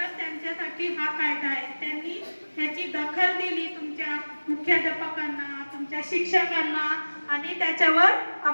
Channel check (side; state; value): both; inverted; correlation -1.00